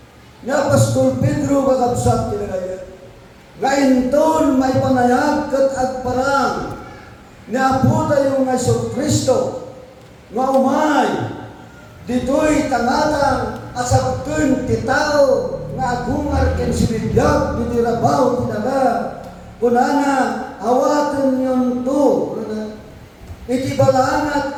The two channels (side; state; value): both; identical; correlation 1.00